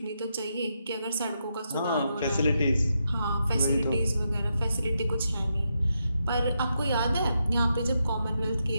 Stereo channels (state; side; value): inverted; both; correlation -0.83